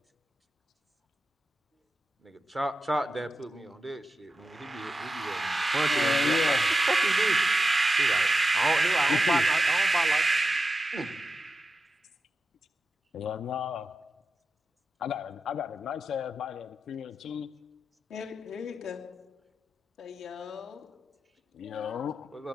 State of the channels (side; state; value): both; normal; correlation 0.91